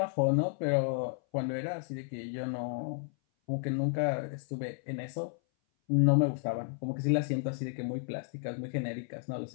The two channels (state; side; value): silent; right; 56 dB below the other